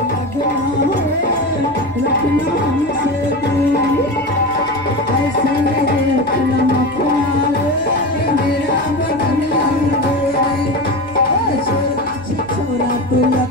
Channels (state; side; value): normal; both; correlation 0.24